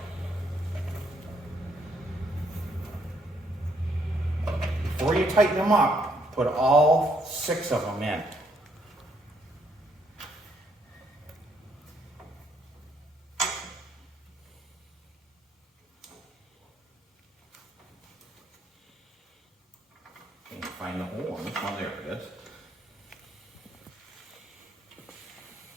before you tighten them up, put all 6 of them in. Can't find the hole on this one. There it is.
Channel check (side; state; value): both; normal; correlation 0.71